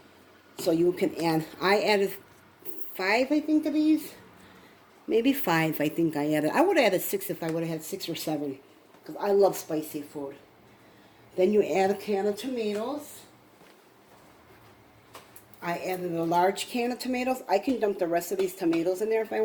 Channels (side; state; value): both; identical; correlation 1.00